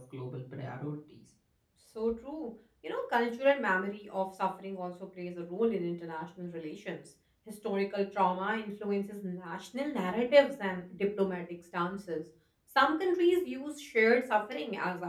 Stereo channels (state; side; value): identical; both; correlation 1.00